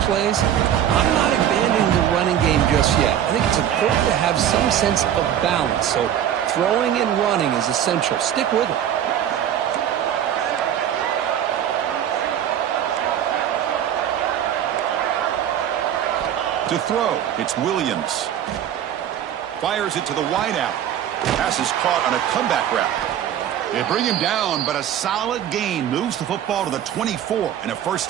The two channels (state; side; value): quieter; left; 10.2 dB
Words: plays, I'm not abandoning the running game just yet. I think it's important to have some sense of balance. So throwing and running is essential. Stick with it. To throw, it's Williams. Fires it to the wideout. Pass is caught on a comeback route. They bring him down, but a solid gain moves the football to the 24 and a first